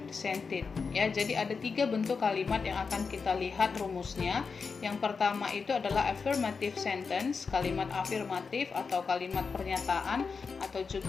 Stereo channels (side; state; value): right; quieter; 5.1 dB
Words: Ya, jadi ada 3 bentuk kalimat yang akan kita lihat rumusnya. Yang pertama itu adalah affirmative sentence, kalimat afirmatif atau kalimat pernyataan atau